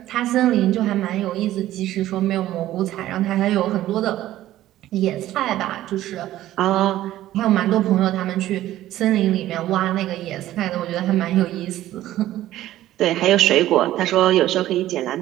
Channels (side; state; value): left; quieter; 14.1 dB